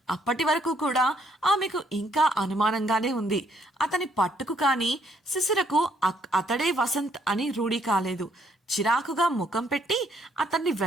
అప్పటి వరకు కూడా ఆమెకు ఇంకా అనుమానంగానే ఉంది. అతని పట్టుకు కానీ శిశిరకు అతడే వసంత్ అని రూఢీ కాలేదు. చిరాకుగా ముఖం పెట్టి అతన్ని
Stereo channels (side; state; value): both; normal; correlation 0.68